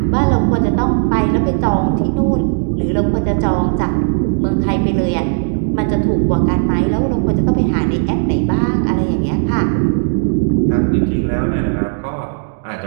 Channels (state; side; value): silent; left; 66 dB below the other